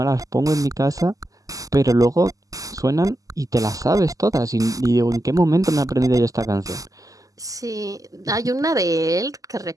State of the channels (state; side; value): late; left; 0.17 ms